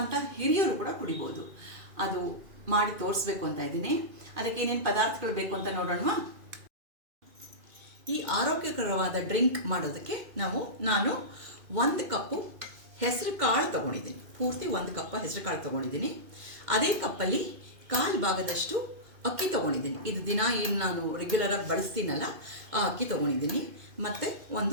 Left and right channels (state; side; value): late; left; 2.5 ms